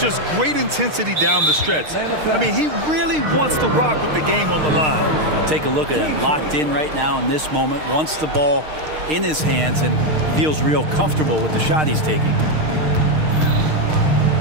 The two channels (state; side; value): late; left; 6.5 ms